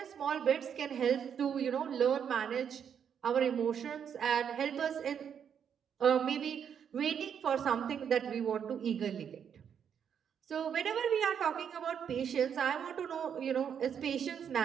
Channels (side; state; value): left; quieter; 8.0 dB